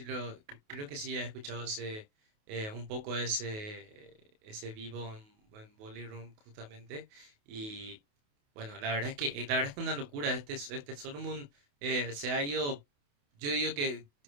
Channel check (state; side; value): late; left; 28 ms